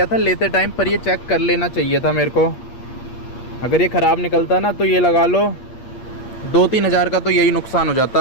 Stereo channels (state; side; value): late; right; 8.5 ms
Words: था लेते टाइम, पर ये चेक कर लेना चाहिए था मेरे को। अगर ये ख़राब निकलता ना तो ये लगा लो 2-3 हज़ार का तो यही नुकसान हो